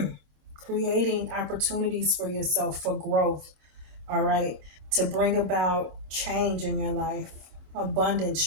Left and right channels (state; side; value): late; left; 27 ms